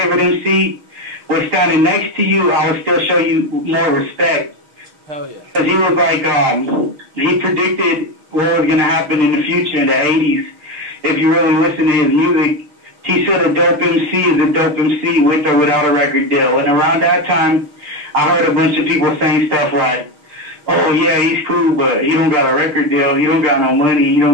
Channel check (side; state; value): left; late; 6.4 ms